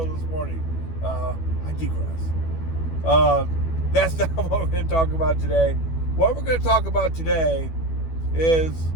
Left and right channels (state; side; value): late; right; 12 ms